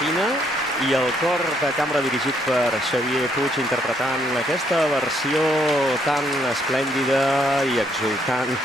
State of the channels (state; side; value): normal; both; correlation 0.71